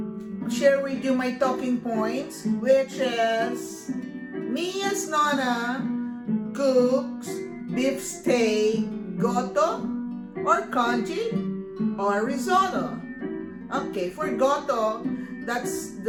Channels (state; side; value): identical; both; correlation 1.00